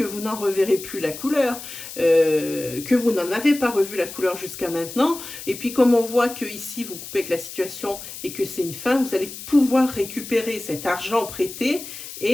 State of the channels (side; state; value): left; noise; hiss, 12 dB below the sound